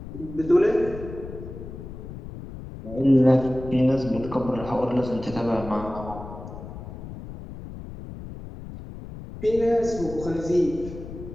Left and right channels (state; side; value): noise; left; rumble, 12 dB below the sound